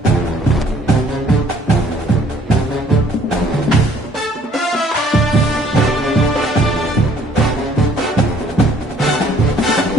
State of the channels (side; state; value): both; normal; correlation 0.60